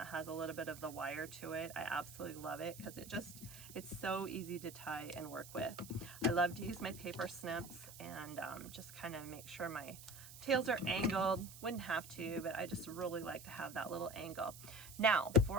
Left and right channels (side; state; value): right; noise; hiss, 15 dB below the sound